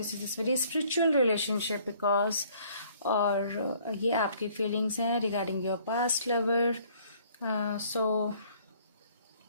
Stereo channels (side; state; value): both; inverted; correlation -0.59